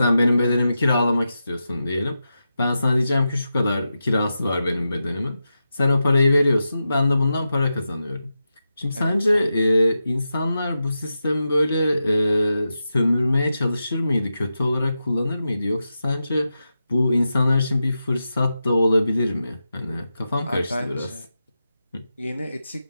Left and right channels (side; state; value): both; inverted; correlation -0.89